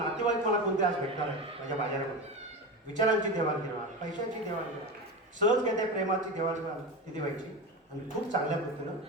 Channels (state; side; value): normal; both; correlation 0.23